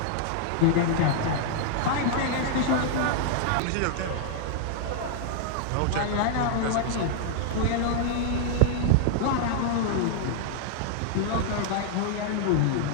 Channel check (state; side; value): different; both; correlation -0.01